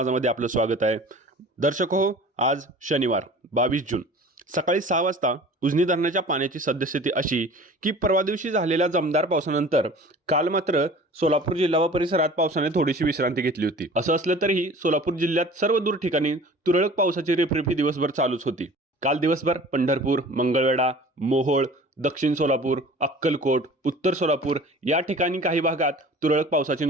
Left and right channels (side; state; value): both; normal; correlation 0.43